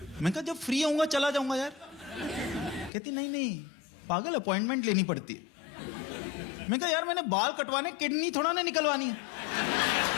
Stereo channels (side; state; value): right; drops out; at 2.9 s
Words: मैंने कहा जब फ्री होऊंगा चला जाऊंगा यार। कहती नहीं नहीं पागल, अपॉइंटमेंट लेनी पड़ती है। मैंने कहा यार मैंने बाल कटवाने, किडनी थोड़ा ना निकलवानी है।